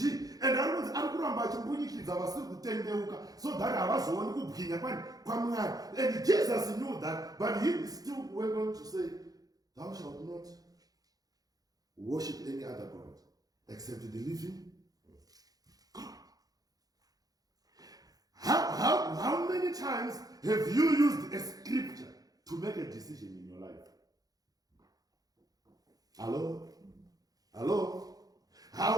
And so that and Jesus knew that, but he still went on to say, thou shalt not worship any other God except the living God. How many times have you used a scripture to make a decision in your life? Hello?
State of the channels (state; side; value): late; left; 0.18 ms